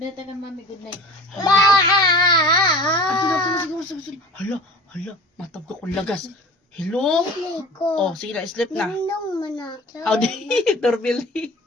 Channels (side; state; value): both; normal; correlation 0.40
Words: ka mami. Good night. Siguro. Hala. Matab ka kung lagas. Hello? Oh, sige na. Sleep na. Nung manakaw. How di? Doorbell.